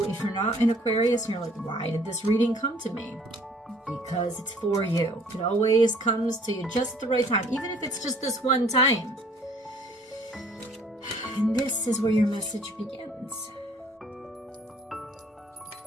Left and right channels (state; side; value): normal; both; correlation 0.57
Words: if you're not in Aquarius and you're like, why did this reading come to me? Because it's for you. It always comes to you just at the right time, even if it's just this one time. And this is where your message begins.